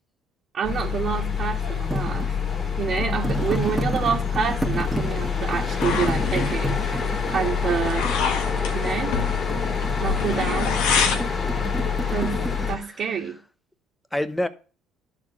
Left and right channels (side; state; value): both; normal; correlation 0.64